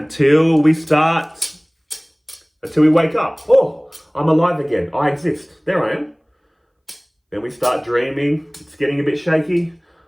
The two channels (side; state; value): both; identical; correlation 1.00